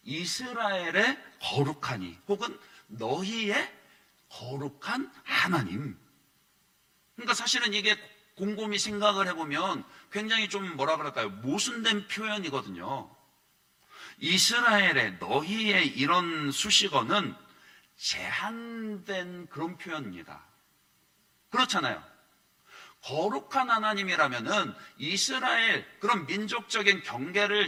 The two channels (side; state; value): both; identical; correlation 1.00